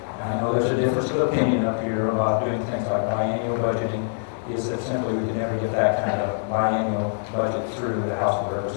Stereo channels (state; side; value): silent; right; digital silence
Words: and I know there's a difference of opinion up here about doing things like biannual budgeting, is that simply we could never get that kind of biannual budget through the House of